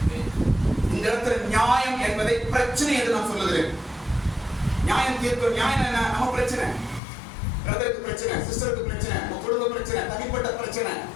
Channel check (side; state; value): right; drops out; at 7.0 s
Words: இந்த இடத்துல நியாயம் என்பதை பிரச்சனை என்று நான் சொல்லுகிறேன். நியாயம் தீர்க்கும். நியாயம் என்ன? நம்ம பிரச்சனை, பிரதருக்கு பிரச்சனை, சிஸ்டருக்கு பிரச்சனை, உங்க குடும்ப பிரச்சனை, தனிப்பட்ட பிரச்சனை,